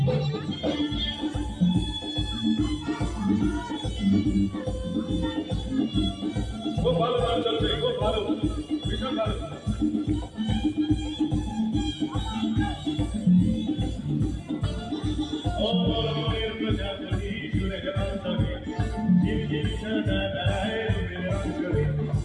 খুব ভালো গান চলছে, খুব ভালো, ভীষণ ভালো।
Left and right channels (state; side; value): identical; both; correlation 1.00